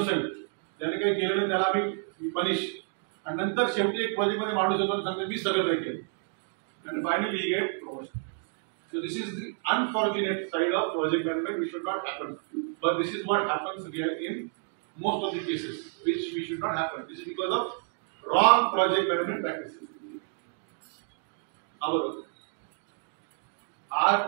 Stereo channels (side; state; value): left; silent; 56 dB below the other